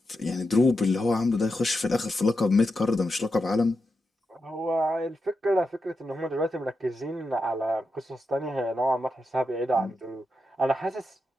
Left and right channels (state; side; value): normal; both; correlation 0.87